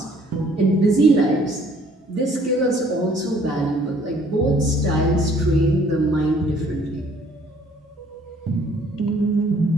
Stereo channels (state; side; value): normal; both; correlation 0.59